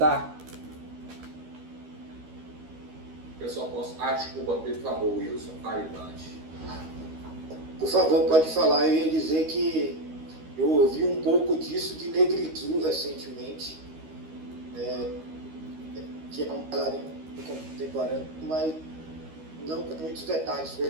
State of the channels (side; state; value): left; late; 13 ms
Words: Eu só posso... desculpa, por favor, Wilson, fale antes. Por favor, pode falar. Eu ia dizer que eu ouvi um pouco disso de Negritude recentemente, que é um bailarino contemporâneo, mas não com muitos detalhes,